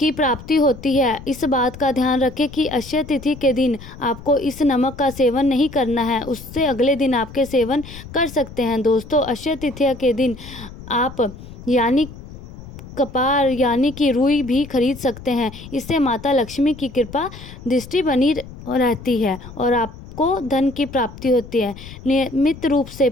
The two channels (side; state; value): left; noise; rumble, 15 dB below the sound